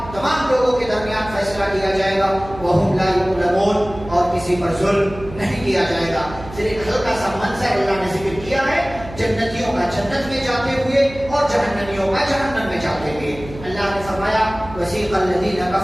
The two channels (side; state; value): right; noise; hum, 15 dB below the sound